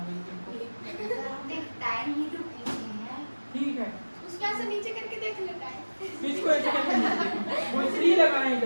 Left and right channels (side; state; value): both; inverted; correlation -1.00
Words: रही तुमको। टाइम ही तो पूछे हैं। ठीक है, उसको ऐसे नीचे करके देख लेता है। इसको ऐसे करके वो इसलिए